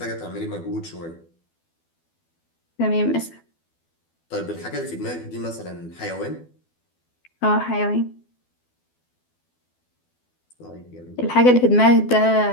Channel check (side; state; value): right; late; 12 ms